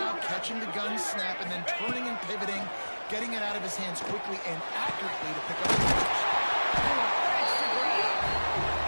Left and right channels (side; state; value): both; inverted; correlation -1.00